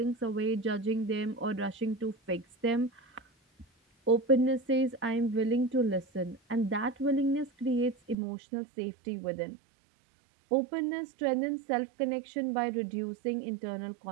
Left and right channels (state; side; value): drops out; left; at 8.2 s